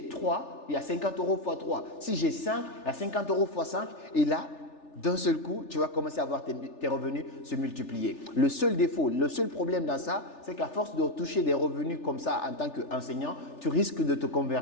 3, il y a 50 euros x 3. Si j'ai 5, il y a 50 euros x 5. Et là, d'un seul coup, tu vas commencer à voir tes revenus se multiplier. Le seul défaut, le seul problème dans ça, c'est qu'à force de toucher des revenus comme ça en tant qu'enseignant, tu risques de te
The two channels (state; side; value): late; right; 3.4 ms